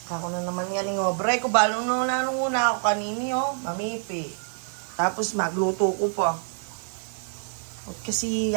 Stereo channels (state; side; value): silent; left; 61 dB below the other